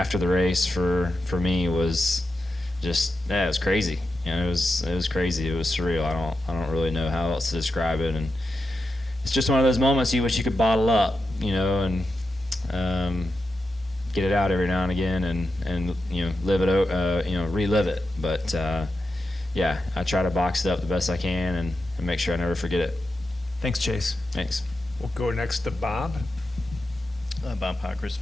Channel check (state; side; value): normal; both; correlation 0.89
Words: the race for me was just, it was crazy. It was crazy. It was surreal. I don't really know how else to describe it, and it's just one of those moments you wish you could bottle up, and get it out every now and again, and live it, relive it. But I try to box it up the best I can and make sure I never forget it. Thanks, Chase. Thanks. We'll go next to Bob. Bob Pockers,